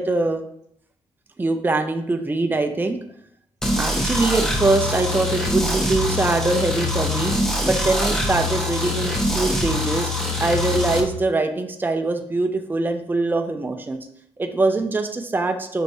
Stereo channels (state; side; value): normal; both; correlation 0.73